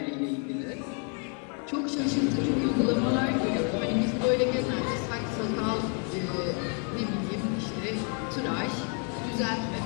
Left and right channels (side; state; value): right; quieter; 39.8 dB